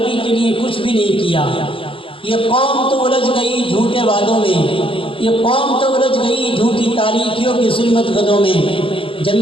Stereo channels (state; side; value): late; right; 0.26 ms